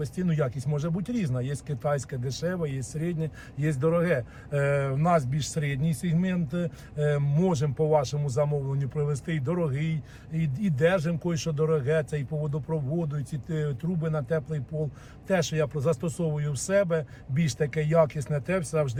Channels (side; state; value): both; identical; correlation 1.00